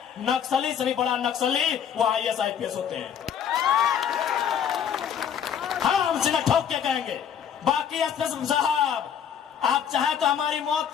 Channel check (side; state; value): right; quieter; 8.4 dB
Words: नक्सली से भी बड़ा नक्सली वो आईएएस, आईपीएस होते हैं। हाँ, हम सीधा ठोक के कहेंगे। बाकी एसपी साहब, आप चाहे तो हमारी मौत